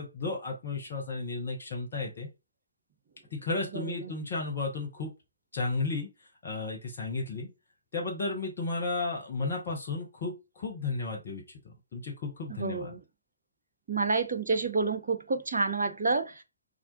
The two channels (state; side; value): inverted; both; correlation -0.52